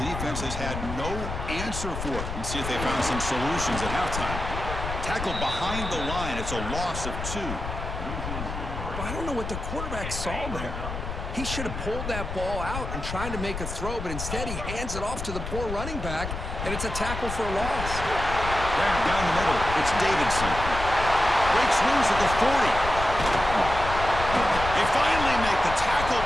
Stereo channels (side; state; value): left; noise; rumble, 6 dB below the sound